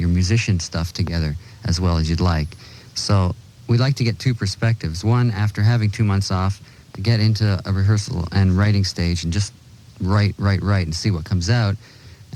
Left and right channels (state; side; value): identical; both; correlation 1.00